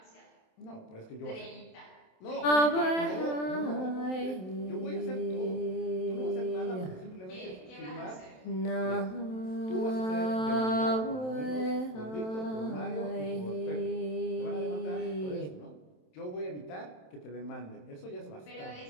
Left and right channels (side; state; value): right; late; 27 ms